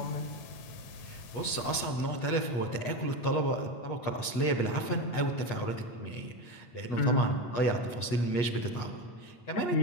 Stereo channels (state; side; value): late; right; 8.4 ms